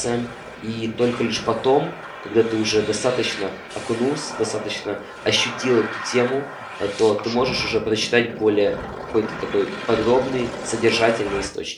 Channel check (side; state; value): both; identical; correlation 1.00